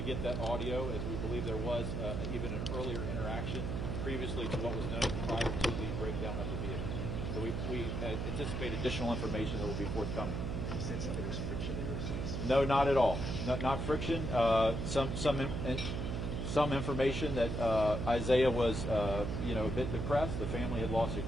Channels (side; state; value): right; noise; hum, 2 dB below the sound